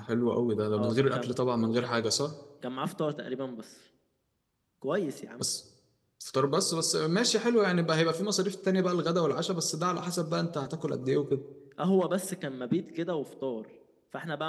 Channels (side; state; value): both; identical; correlation 1.00